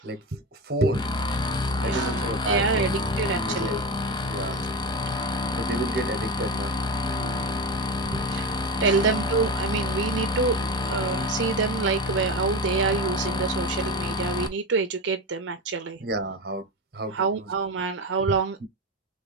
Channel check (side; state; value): both; normal; correlation 0.22